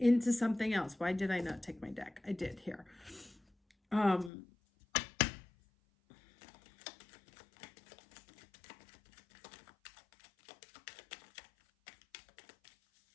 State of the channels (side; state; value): right; drops out; at 4.3 s